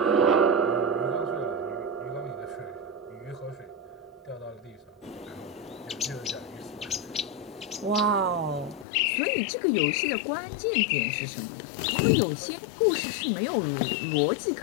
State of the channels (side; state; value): right; drops out; at 8.8 s